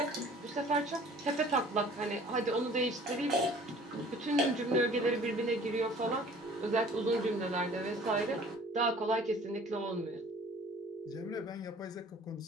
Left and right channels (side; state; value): both; normal; correlation 0.50